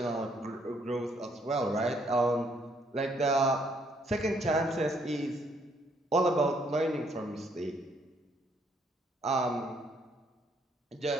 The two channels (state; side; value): normal; both; correlation 0.68